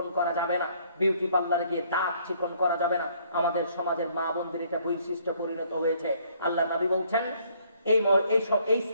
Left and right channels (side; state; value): both; inverted; correlation -0.64